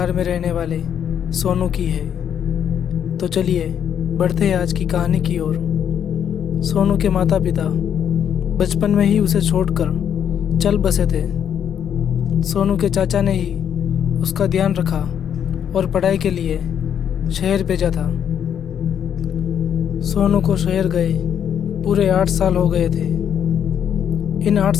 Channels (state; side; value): quieter; right; 8.8 dB